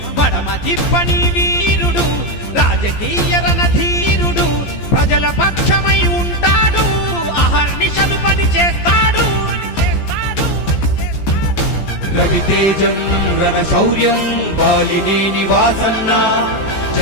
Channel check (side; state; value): right; late; 14 ms